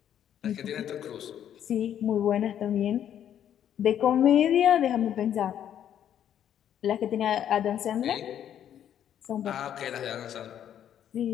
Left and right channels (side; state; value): right; quieter; 10.0 dB